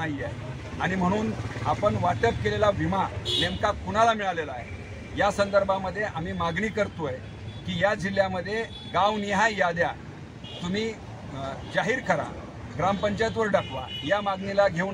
आहे. आणि म्हणून आपण वाटप केलेला विमा नेमका कुणाला मिळालेला आहे या संदर्भामध्ये आम्ही मागणी करतोय की या जिल्ह्यामध्ये गावनिहाय याद्या तुम्ही जाहीर करा, ग्रामपंचायतवर टाकवा. या मागणीला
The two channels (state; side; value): identical; both; correlation 1.00